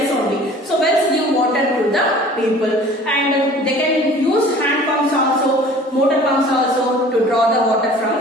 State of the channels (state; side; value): normal; both; correlation 0.47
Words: only. So wells give water to the people and they can use hand pumps also, motor pumps also to draw the water